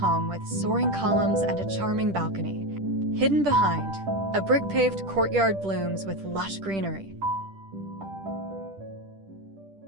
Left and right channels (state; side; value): late; left; 10 ms